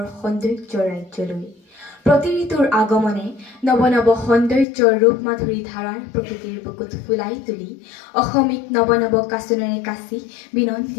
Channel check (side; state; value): right; drops out; at 4.7 s